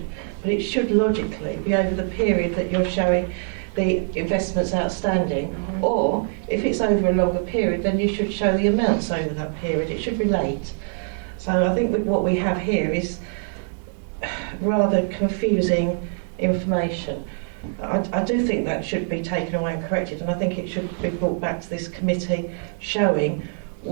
but it should logically be over the period that you're showing the investments outstanding, or if it's over a longer period, then you should show the amounts over that period. It should relate. So I think what we have here is rather confusing information. I do think that should be taken away and corrected, and I think it should be brought back to this committee showing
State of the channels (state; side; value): silent; left; 59 dB below the other